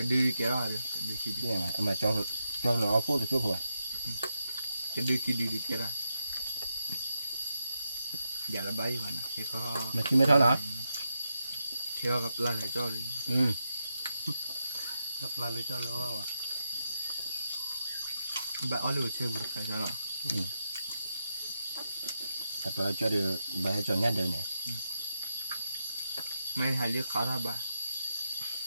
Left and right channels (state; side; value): inverted; both; correlation -0.84